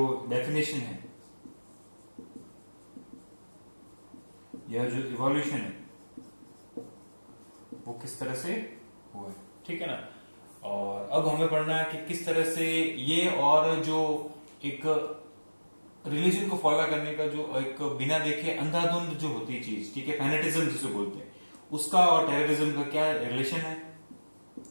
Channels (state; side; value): inverted; both; correlation -1.00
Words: डेफिनेशन है या जो इवोल्यूशन है वो किस तरह से हुआ है, ठीक है ना। और अब हमें पढ़ना है कि किस तरह से ये और जो एक रिलीजन को फॉलो करने का जो एक बिना देखे अंधाधुंध जो होती है चीज, ठीक है, फैनेटिज्म जिसे बोलते हैं, उसका और टेररिज्म का क्या रिलेशन है,